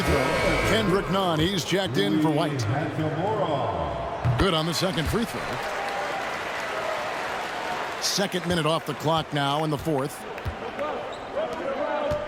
throw. Kendrick Nunn, he's checked in for White. Good on the 2nd free throw. Second minute off the clock now in the fourth.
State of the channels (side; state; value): both; identical; correlation 1.00